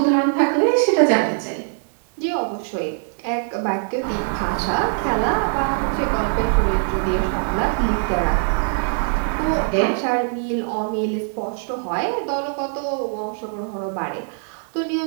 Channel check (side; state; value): left; silent; 64 dB below the other